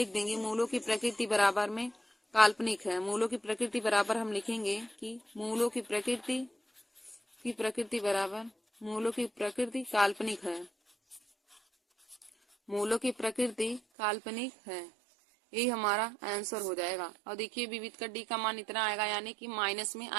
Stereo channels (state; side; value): drops out; left; at 13.8 s